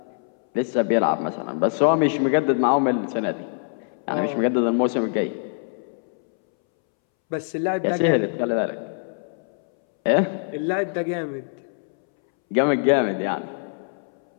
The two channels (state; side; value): silent; right; 63 dB below the other